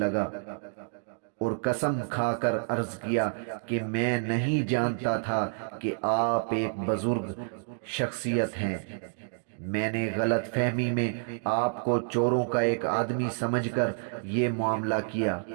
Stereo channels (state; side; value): silent; left; digital silence